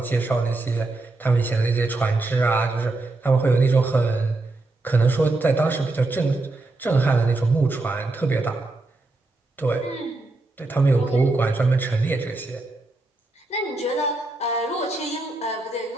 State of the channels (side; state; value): left; quieter; 3.1 dB